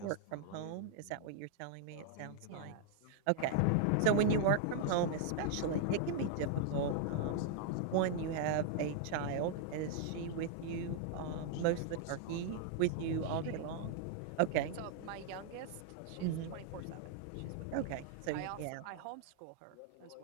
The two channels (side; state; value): both; different; correlation 0.00